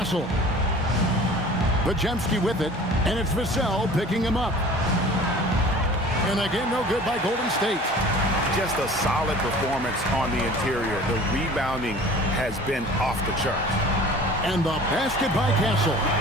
Podziemski with it, and it's Vassell picking him up. And again, no good by Golden State. Just a solid performance on the interior. The rebounding has been off the charts. And the basket by Castle.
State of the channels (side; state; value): both; normal; correlation 0.44